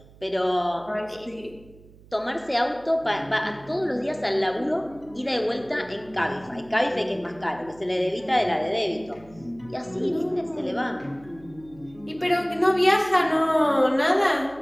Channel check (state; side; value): noise; right; hum, 24 dB below the sound